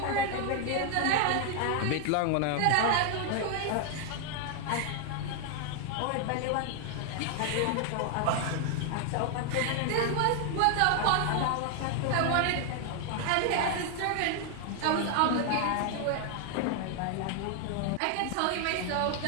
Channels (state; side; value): different; both; correlation 0.00